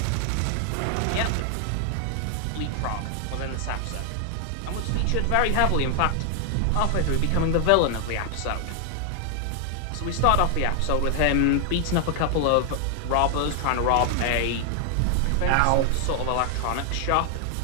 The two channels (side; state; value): both; different; correlation 0.00